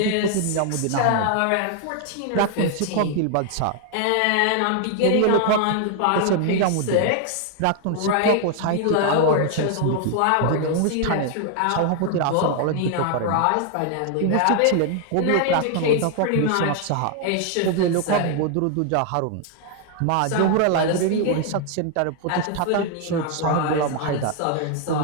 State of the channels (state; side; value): different; both; correlation 0.00